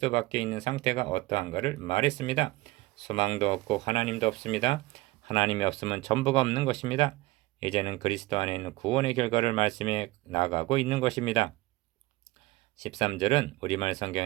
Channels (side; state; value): left; quieter; 20.0 dB